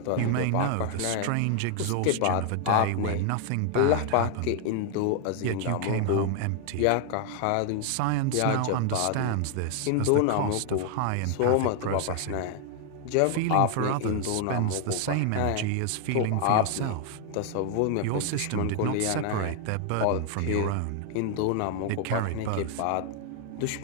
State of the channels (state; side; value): different; both; correlation 0.00